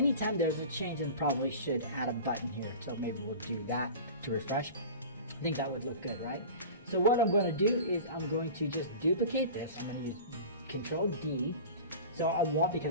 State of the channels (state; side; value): inverted; both; correlation -0.36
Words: there's a change, and probably should add a button here. So maybe we'll do that to refresh. I think that would look good, right? So what I'm going to do is I'm going to just duplicate this. I'm going to use Control D. So